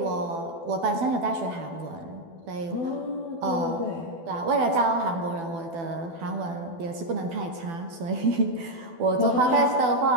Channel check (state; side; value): late; left; 12 ms